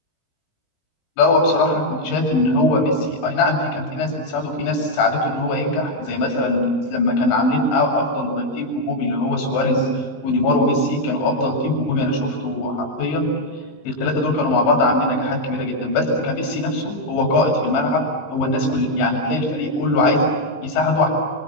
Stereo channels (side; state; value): right; late; 19 ms